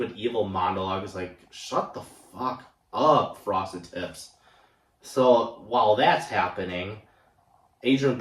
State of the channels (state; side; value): identical; both; correlation 1.00